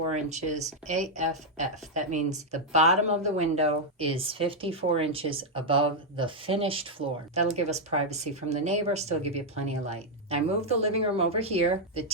inches AFF. That means the bottom of the window is 54 inches above the finished floor. That'll give us privacy from the neighbor, still give you plenty of light. I moved the living room over here. The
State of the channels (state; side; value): normal; both; correlation -0.01